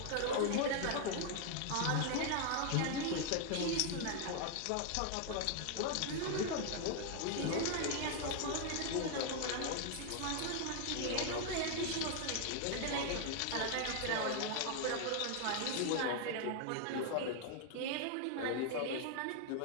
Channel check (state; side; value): different; both; correlation 0.00